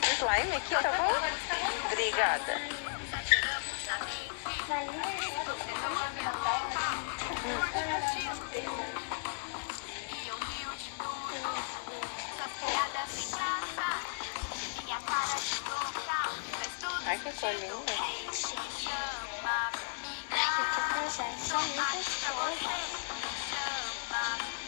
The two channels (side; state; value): right; silent; digital silence